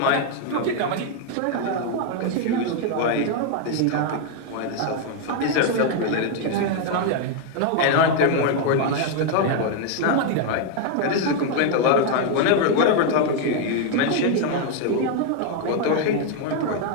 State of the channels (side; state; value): both; different; correlation 0.01